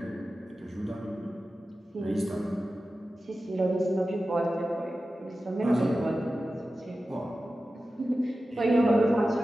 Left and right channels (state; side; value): normal; both; correlation 0.94